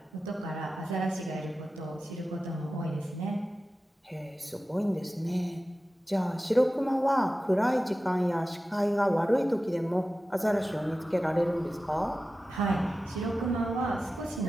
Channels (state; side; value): normal; both; correlation 0.94